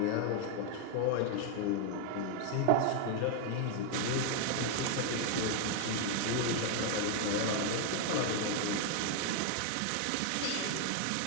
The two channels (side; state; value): both; different; correlation 0.00